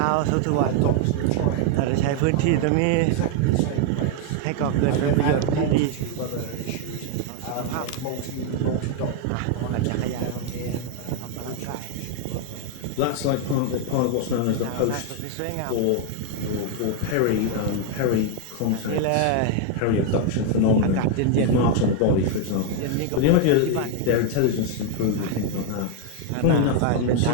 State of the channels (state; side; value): different; both; correlation 0.00